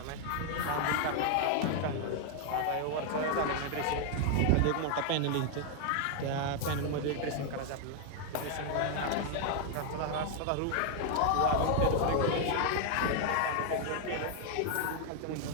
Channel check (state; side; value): different; both; correlation 0.00